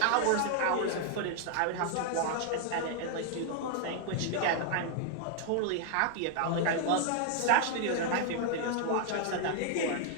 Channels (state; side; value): different; both; correlation 0.00